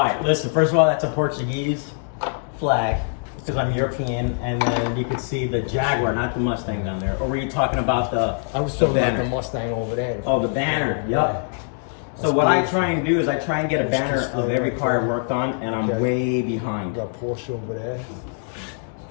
right, listen. First of all, that's a Portuguese flag because I'm European, and then you can see the Jaguar, not the Mustang down there. Or were you talking about the? I was talking about the Mustang over there. Oh, the banner. Yep. So what I try and do is I try and get a banner of every car I worked on, and I'm way behind. We got Porsche over there.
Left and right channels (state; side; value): silent; right; 61 dB below the other